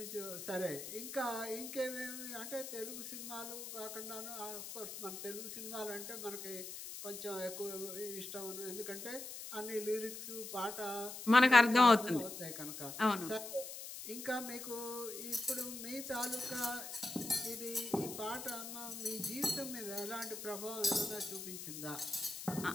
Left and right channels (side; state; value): left; noise; hiss, 9 dB below the sound